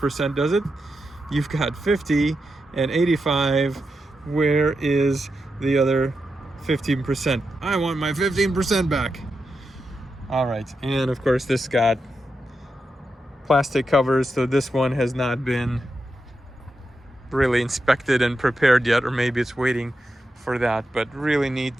does it? You've got 50 and 85. Where is the other 15%? I want my 15% back. All right, and of course this got plastic covers, so this one has not been really inspected and prepared yet, or maybe it's waiting for that. But really neat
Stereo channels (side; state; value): both; normal; correlation 0.87